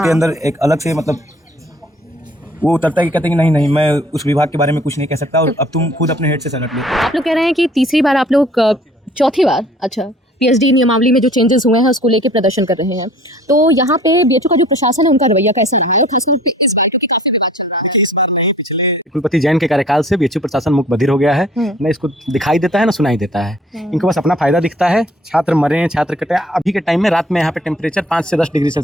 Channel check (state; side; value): normal; both; correlation 0.53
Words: अंदर एक अलग से मतलब वो उतरता है कि कहते हैं कि नहीं मैं उस विभाग के बारे में कुछ नहीं कह सकता और अब तुम खुद अपने हेड से सलट लो। आप लोग कह रहे हैं कि तीसरी बार आप लोग, चौथी बार, अच्छा, पीएचडी नियमावली में जो चेंजेस हुए हैं उसको लेके प्रदर्शन कर रहे हैं, तो यहाँ पे बीएचयू का जो प्रशासन है उनका रवैया कैसा है? कुलपति जैन के कार्यकाल से बीएचयू प्रशासन मुख बधिर हो गया है, न इसको दिखाई देता है न सुनाई देता है। इनको बस अपना फायदा दिखता है, छात्र मरे, छात्र कटे। अभी के टाइम में रात में यहाँ पे टेम्परेचर 5 से 10 डिग्री